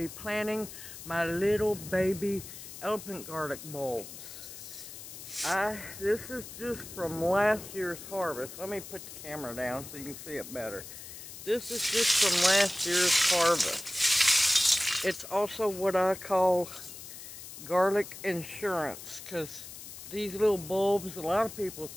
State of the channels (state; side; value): noise; left; hiss, 13 dB below the sound